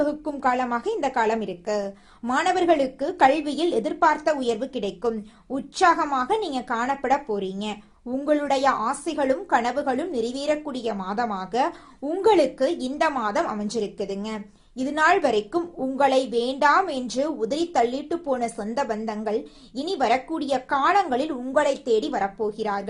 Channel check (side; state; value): both; identical; correlation 1.00